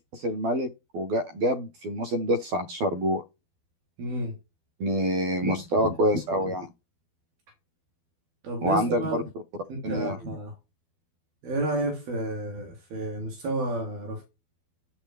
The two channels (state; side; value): late; left; 12 ms